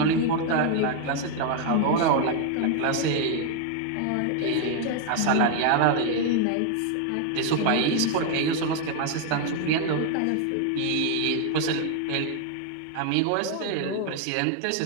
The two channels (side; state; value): both; different; correlation 0.00